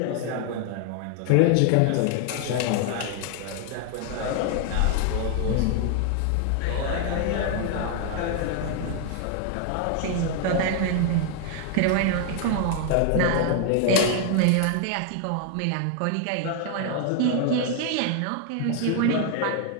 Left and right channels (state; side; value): different; both; correlation 0.00